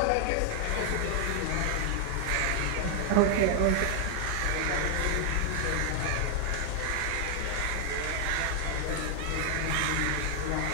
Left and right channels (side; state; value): both; different; correlation 0.00